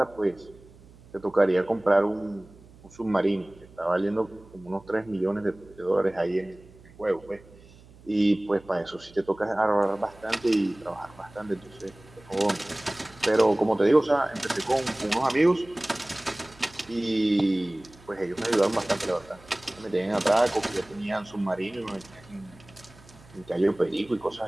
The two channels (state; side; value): noise; right; hum, 23 dB below the sound